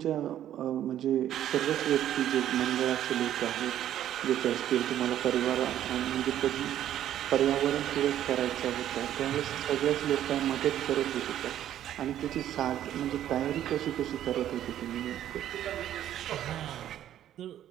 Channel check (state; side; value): quieter; left; 11.6 dB